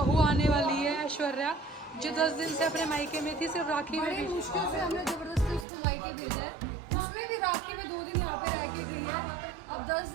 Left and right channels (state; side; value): drops out; left; at 5.7 s